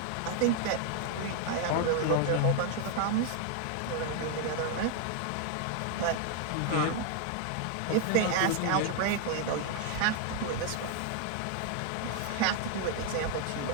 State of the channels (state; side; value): different; both; correlation 0.00